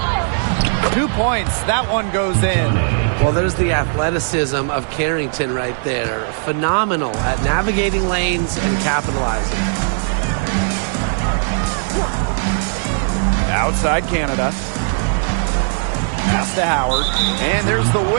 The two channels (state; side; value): silent; left; 67 dB below the other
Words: 2 points. That one goes in. Well, there's the athleticism of Carrington right there. Phenomenal at navigating lanes and capitalizing. Outside Canada. Pass to Howard. And there's the